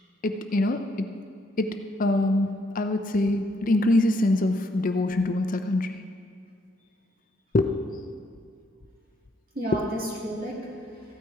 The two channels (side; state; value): both; normal; correlation 0.72